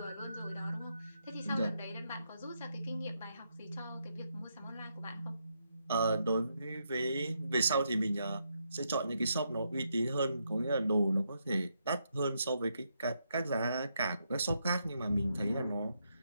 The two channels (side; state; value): both; inverted; correlation -0.80